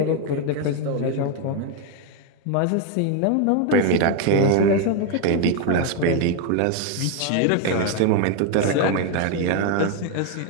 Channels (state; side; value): different; both; correlation 0.01